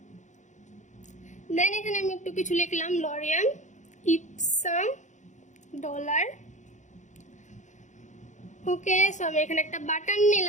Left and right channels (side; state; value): right; late; 0.35 ms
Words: দেন এখানে আমি একটু কিছু লিখলাম, লরিয়াম ইপসাম ডলার। ওকে, সো আমি এখানে একটা বাটন